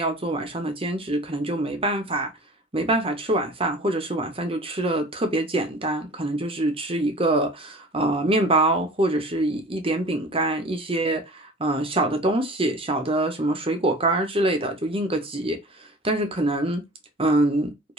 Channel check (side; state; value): both; normal; correlation 0.42